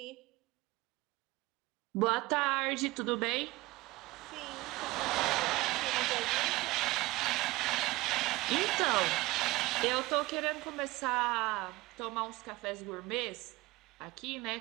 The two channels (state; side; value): quieter; left; 20.4 dB